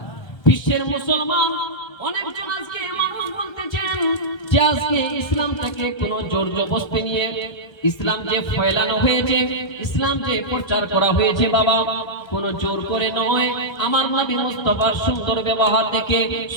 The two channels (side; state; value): right; late; 1.3 ms